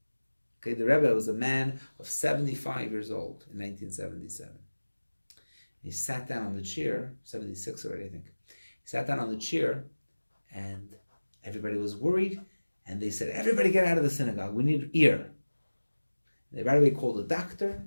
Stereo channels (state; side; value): inverted; both; correlation -1.00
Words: Okay, the Rebbe was a man of 75 years old in 1977. He sat down on the chair, 76 already, I think. He sat down on the chair, and everybody was worried, and they said, everybody get out of the synagogue, we need ear. They right away called a doctor,